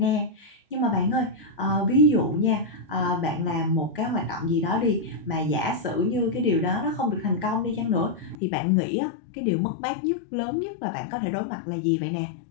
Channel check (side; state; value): right; drops out; at 8.3 s